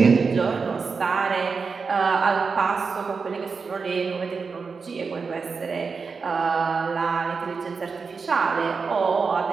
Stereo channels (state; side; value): quieter; left; 5.0 dB